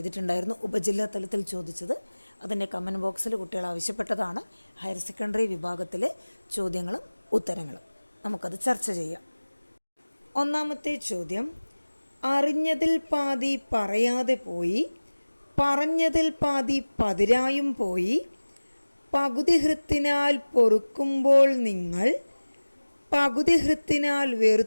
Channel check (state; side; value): inverted; both; correlation -1.00